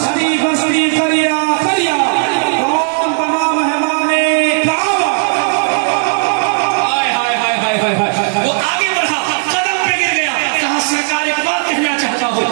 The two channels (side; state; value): left; silent; digital silence